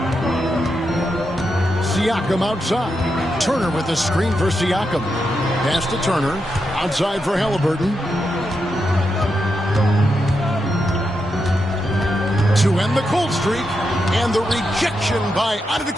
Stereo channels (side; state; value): both; normal; correlation 0.85